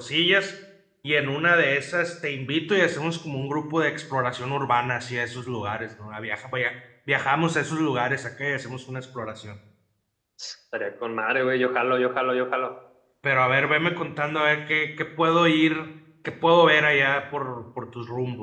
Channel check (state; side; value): identical; both; correlation 1.00